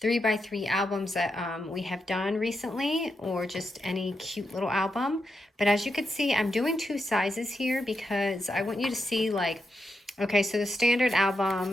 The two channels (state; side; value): normal; both; correlation 0.85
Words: 3x3 albums that we have done recently, or just any cute little album. But as you can see, I'm doing two sizes here because I want you to see, like, okay, so the standard